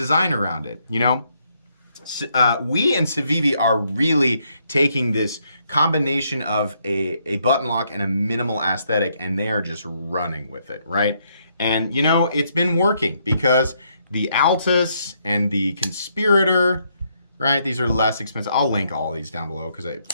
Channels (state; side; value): inverted; both; correlation -0.74